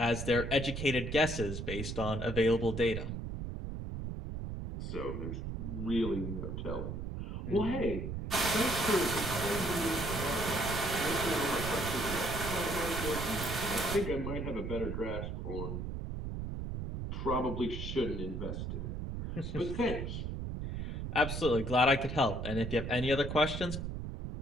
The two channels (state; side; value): noise; right; rumble, 5 dB below the sound